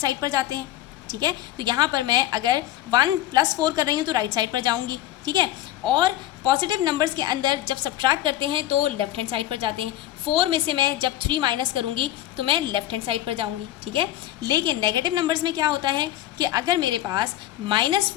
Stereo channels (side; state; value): right; quieter; 13.8 dB